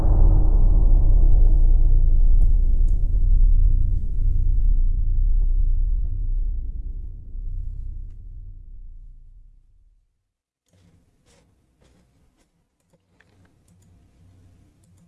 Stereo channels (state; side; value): identical; both; correlation 1.00